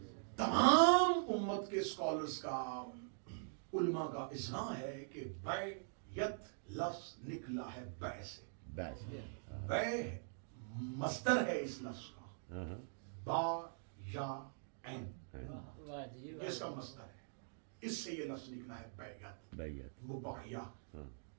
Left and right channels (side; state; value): left; silent; digital silence